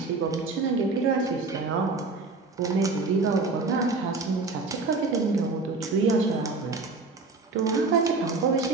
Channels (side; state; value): left; quieter; 3.8 dB